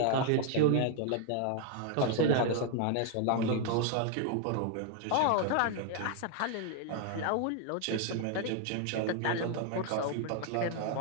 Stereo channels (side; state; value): both; different; correlation 0.00